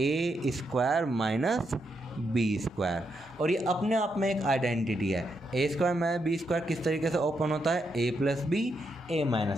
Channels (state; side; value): normal; both; correlation 0.81